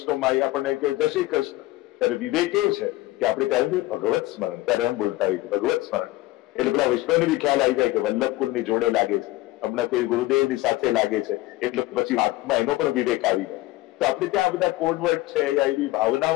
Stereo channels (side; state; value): right; quieter; 18.1 dB